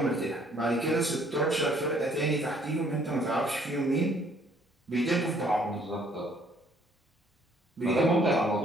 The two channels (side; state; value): both; normal; correlation 0.62